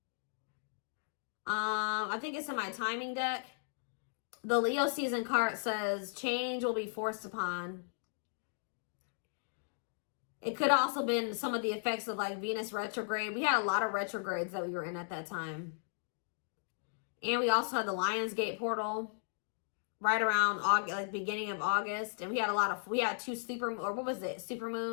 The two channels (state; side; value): silent; right; digital silence